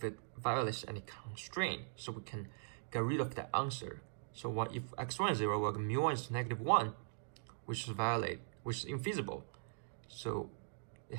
it violates any constraint, so we can get rid of that answer. So if x1 is 0, well, mu1 is -1, which is infeasible. So it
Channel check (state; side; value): silent; left; digital silence